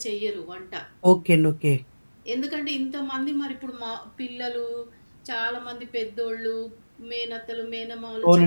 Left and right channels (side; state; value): both; inverted; correlation -1.00